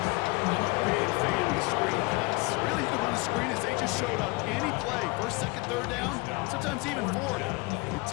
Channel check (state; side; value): quieter; right; 25.3 dB